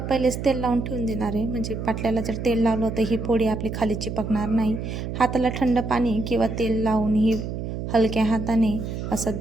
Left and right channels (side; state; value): right; noise; hum, 5 dB below the sound